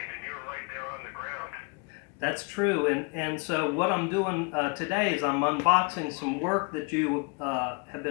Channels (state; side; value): quieter; right; 34.0 dB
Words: and you were right there on the ground. That's true, and so what I'm doing today is I'm unboxing some work that you have